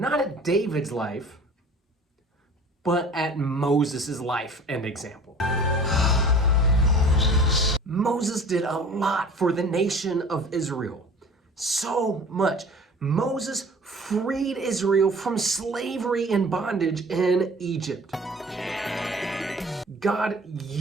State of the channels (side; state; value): both; normal; correlation 0.45